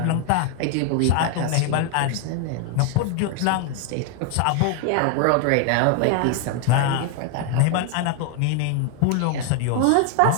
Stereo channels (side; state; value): both; different; correlation 0.00